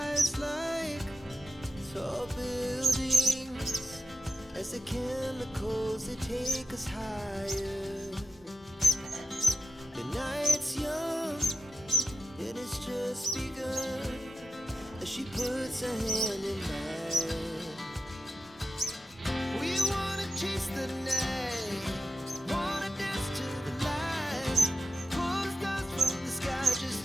like tall buildings as the chemicals, they take us higher. The night's young, and it's just begun, as she puts her hand in mine. We wanna chase the night, wanna dance to the light, pull stars from the sky, just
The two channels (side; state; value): both; normal; correlation 0.86